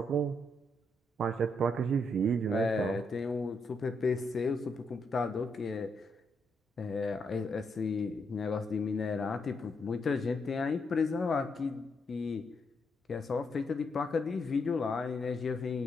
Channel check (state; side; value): normal; both; correlation 0.78